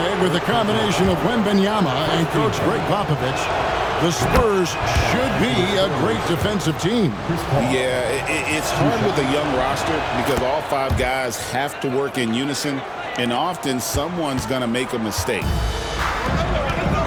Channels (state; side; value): identical; both; correlation 1.00